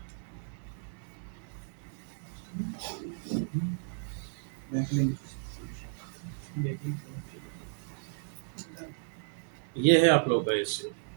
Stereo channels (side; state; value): left; silent; digital silence